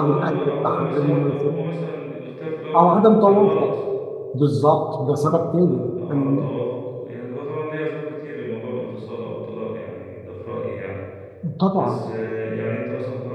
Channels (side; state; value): both; identical; correlation 1.00